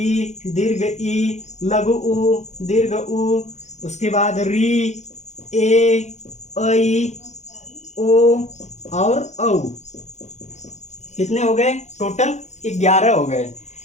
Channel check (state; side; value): late; right; 0.33 ms